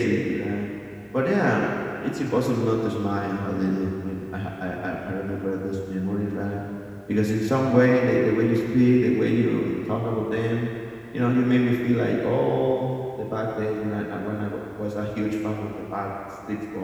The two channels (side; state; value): both; identical; correlation 1.00